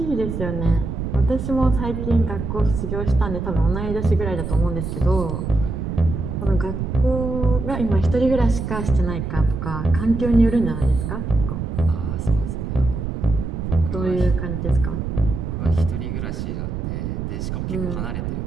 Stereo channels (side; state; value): right; noise; rumble, 4 dB below the sound